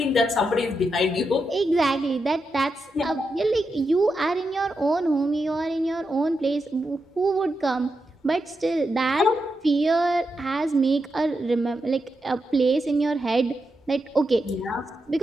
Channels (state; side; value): normal; both; correlation 0.86